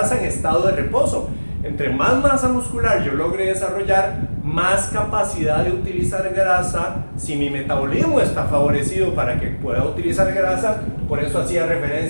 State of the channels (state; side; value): inverted; both; correlation -1.00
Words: en estado de reposo. Entre más masa muscular yo logre desarrollar, más capacidad de utilizar grasa. Si mi metabolismo está favorecido para que pueda utilizar grasa, por eso hacía